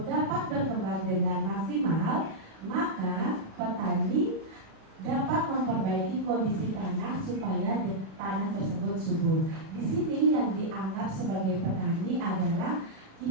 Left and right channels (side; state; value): left; late; 37 ms